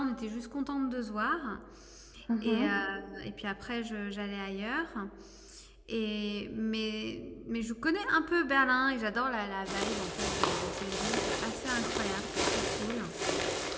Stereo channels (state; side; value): identical; both; correlation 1.00